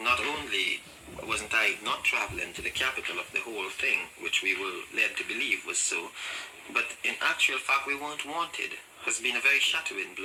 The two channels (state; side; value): identical; both; correlation 1.00